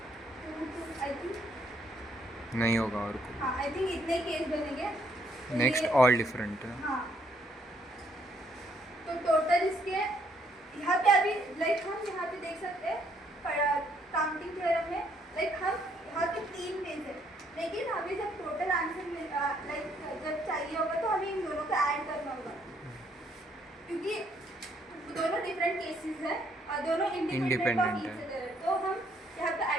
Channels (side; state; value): both; normal; correlation 0.69